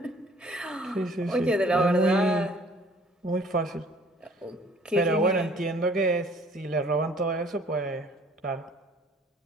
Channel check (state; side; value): normal; both; correlation 0.55